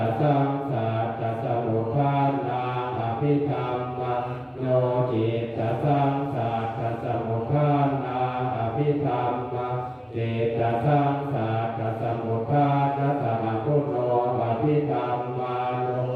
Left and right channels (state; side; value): identical; both; correlation 1.00